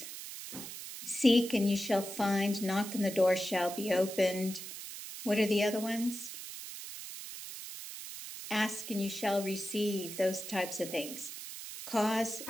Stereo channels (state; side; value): noise; right; hiss, 10 dB below the sound